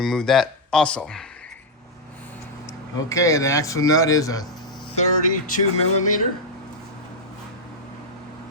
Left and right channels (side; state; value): both; normal; correlation -0.02